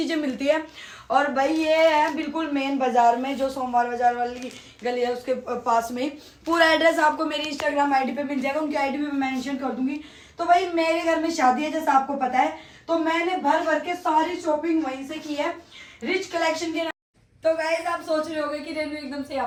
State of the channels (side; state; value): both; identical; correlation 1.00